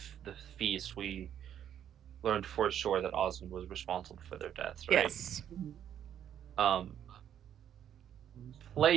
feast, we learned for sure that Osmond was responsible for their deaths, right? Yes.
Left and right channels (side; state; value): left; quieter; 9.9 dB